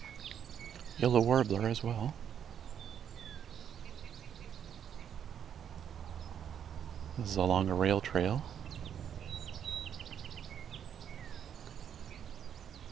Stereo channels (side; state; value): left; quieter; 8.7 dB